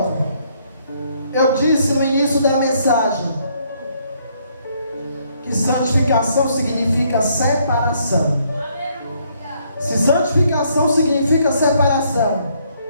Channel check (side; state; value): both; inverted; correlation -0.69